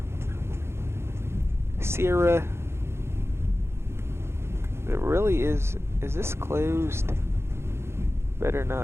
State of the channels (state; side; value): late; left; 0.12 ms